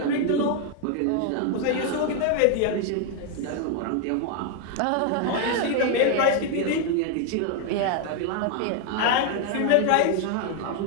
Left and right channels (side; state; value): both; different; correlation 0.00